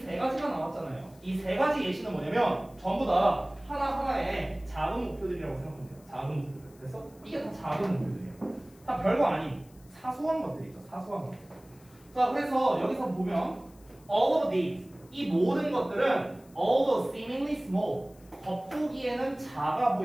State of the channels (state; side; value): noise; left; hiss, 28 dB below the sound